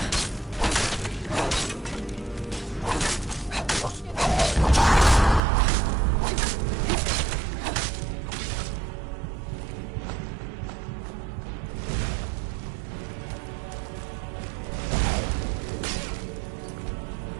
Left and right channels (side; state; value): left; drops out; at 5.4 s